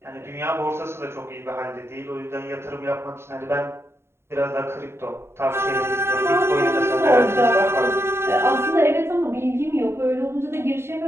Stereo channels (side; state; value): left; late; 0.12 ms